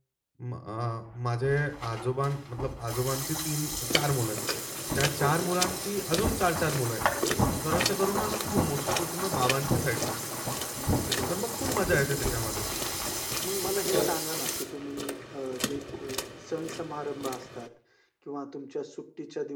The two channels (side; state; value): both; identical; correlation 1.00